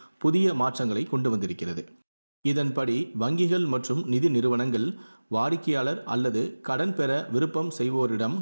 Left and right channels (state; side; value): inverted; both; correlation -1.00